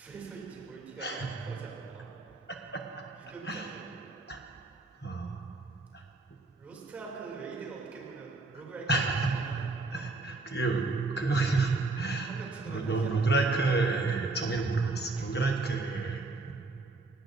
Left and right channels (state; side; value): quieter; left; 3.3 dB